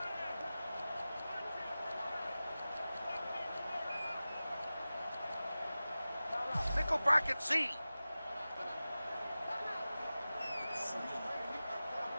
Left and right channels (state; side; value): inverted; both; correlation -0.96